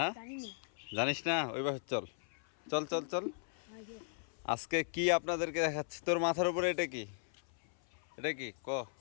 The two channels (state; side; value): silent; right; 53 dB below the other